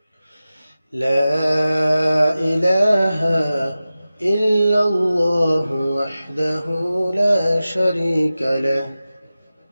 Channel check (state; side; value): inverted; both; correlation -0.95